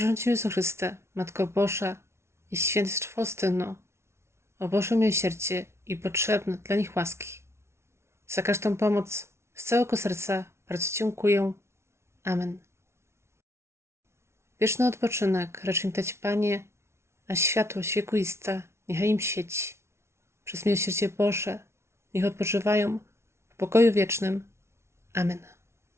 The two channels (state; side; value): late; left; 0.13 ms